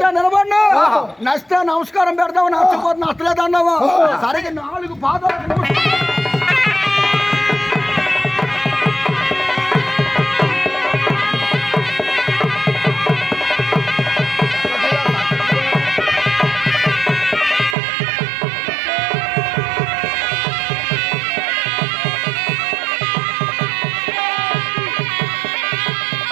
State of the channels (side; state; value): left; drops out; at 17.8 s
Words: నిలబడినా నచ్చితే నమస్కారం పెడతావు, నచ్చపోతే నచ్చలేదు అన్నావా సరిగ్గా 4 పాదాలు